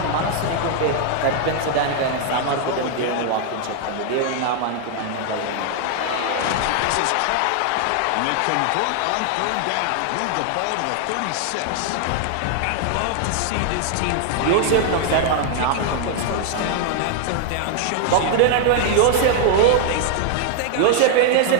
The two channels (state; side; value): different; both; correlation 0.00